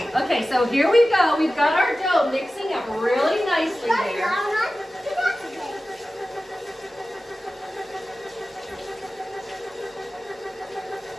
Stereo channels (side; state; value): both; normal; correlation 0.95